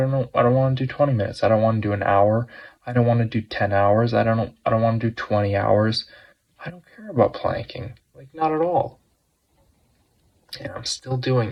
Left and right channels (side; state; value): both; identical; correlation 1.00